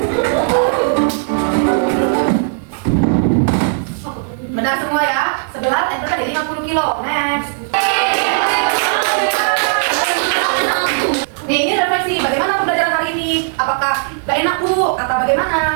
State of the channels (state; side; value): silent; left; digital silence